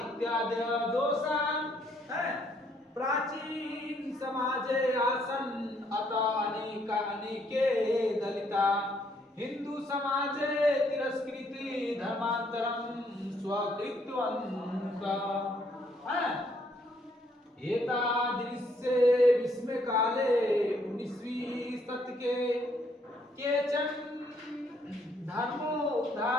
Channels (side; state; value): both; normal; correlation 0.69